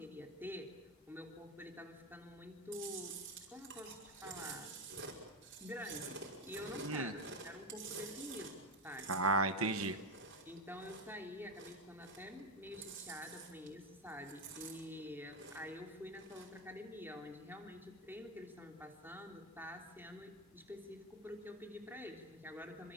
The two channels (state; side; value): normal; both; correlation 0.11